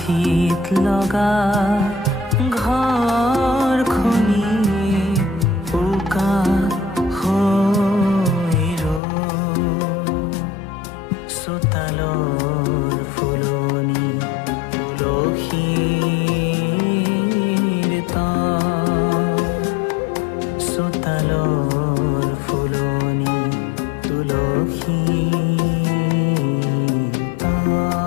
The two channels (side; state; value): right; drops out; at 9.0 s